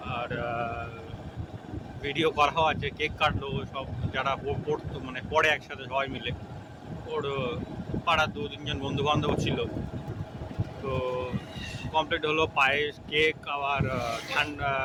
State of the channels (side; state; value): both; identical; correlation 1.00